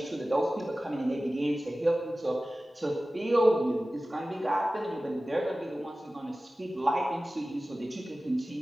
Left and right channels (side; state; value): both; normal; correlation 0.96